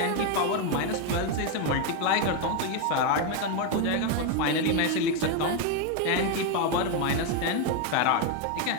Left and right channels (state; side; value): different; both; correlation 0.01